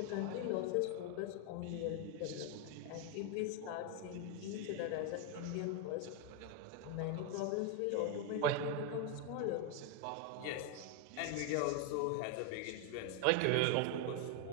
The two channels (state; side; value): different; both; correlation 0.01